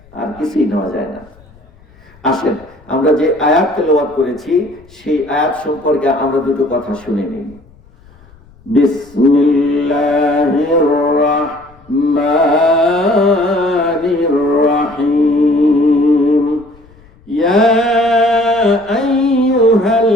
আর কিছুই নেওয়া যায় না। আসেন আমরা যে আয়াত তেলাওয়াত করেছি সেই আয়াত সম্পর্কে আমরা দুটো কথা শুনে নিই। বিসমিল্লাহির রাহমানির রাহিম। ইয়া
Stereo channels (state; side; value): noise; left; rumble, 27 dB below the sound